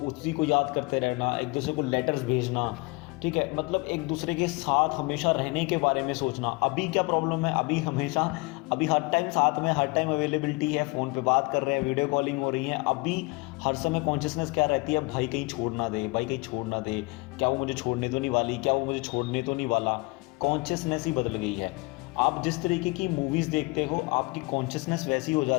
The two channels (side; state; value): right; quieter; 26.8 dB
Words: उसी को याद करते रहना, एक दूसरे को लेटर्स भेजना, ठीक है, मतलब एक दूसरे के साथ हमेशा रहने के बारे में सोचना। अभी क्या प्रॉब्लम है, अभी हर टाइम साथ में, हर टाइम अवेलेबिलिटी है, फ़ोन पे बात कर रहे हैं, वीडियो कॉलिंग हो रही है। अभी हर समय कॉन्शियसनेस क्या रहती है, भाई कहीं छोड़ ना दे, भाई कहीं छोड़ ना दे, क्या वो मुझे छोड़ने तो नहीं वाली, क्या वो मुझे छोड़ने तो नहीं वाला। कॉन्शियसनेस ही बदल गई है। आप जिस तरीके की मूवीज़ देखते हो, आपकी कॉन्शियसनेस वैसी हो